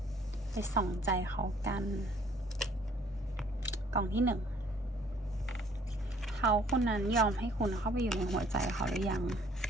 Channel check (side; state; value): both; normal; correlation 0.59